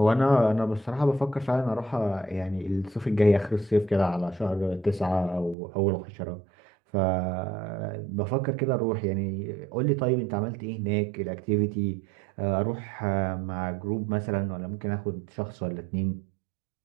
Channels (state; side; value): drops out; left; at 5.6 s